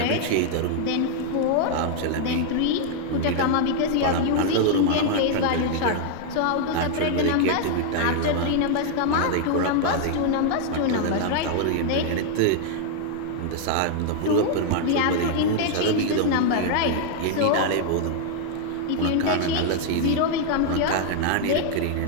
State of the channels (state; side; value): different; both; correlation 0.00